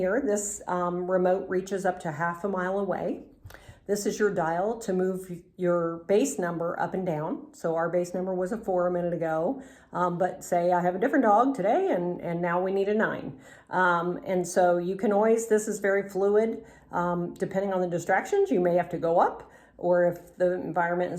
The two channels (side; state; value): both; identical; correlation 1.00